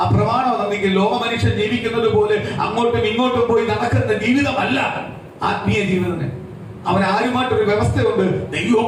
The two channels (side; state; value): both; identical; correlation 1.00